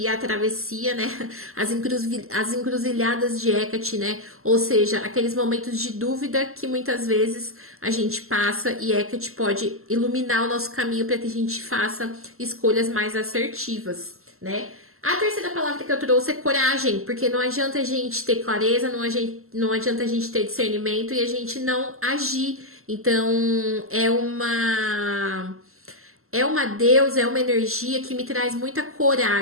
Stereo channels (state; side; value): late; left; 0.62 ms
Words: a travessia, né? As encruzilhadas de Hecate, né? Ou seja, aqueles momentos de dúvida que muitas vezes a gente passa, e Hecate pode iluminar o nosso caminho para que a gente faça escolhas mais assertivas, né? A terceira palavra que eu trouxe é coragem, porque não adianta a gente ter clareza, não adianta a gente ter discernimento e a gente não agir. Então, é uma deusa, é uma energia que me traz muita